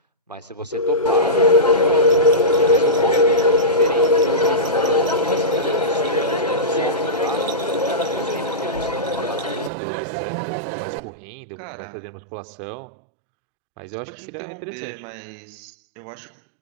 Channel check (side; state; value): left; drops out; at 9.7 s